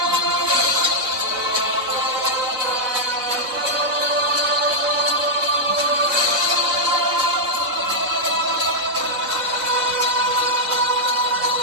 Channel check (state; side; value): late; left; 4.2 ms